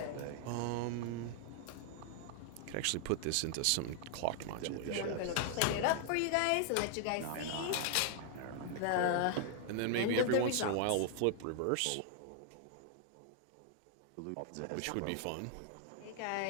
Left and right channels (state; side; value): different; both; correlation 0.00